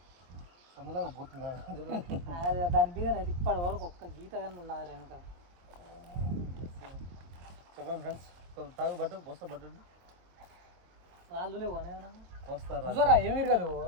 అందులాగా పోతుందా దాని మీద ఇప్పటి వరకు ఒక్క గీత కానీ ఉన్నది వెనక. చెప్పండి ఫ్రెండ్స్, తాగు బట్టు పోస్తా బట్టు రాళ్ళు లేవు వస్తారా ఏమి ఇరగదు.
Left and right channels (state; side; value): late; left; 23 ms